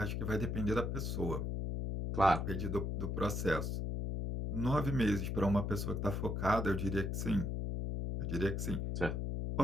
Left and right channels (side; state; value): left; noise; hum, 1 dB below the sound